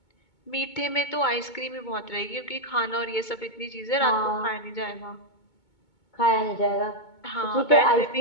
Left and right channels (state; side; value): late; right; 2.2 ms